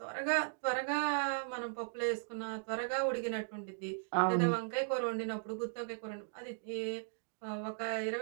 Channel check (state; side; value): silent; left; digital silence